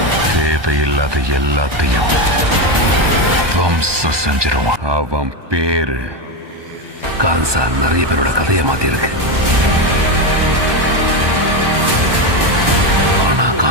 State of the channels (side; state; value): left; late; 1.2 ms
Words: தேவையில்லாத எல்லாத்தையும் வம்சம் செஞ்சிருவான். அவன் பேரு கான்சார் நிறைய பேரோட கதையை மாத்திருக்கு. ஆனா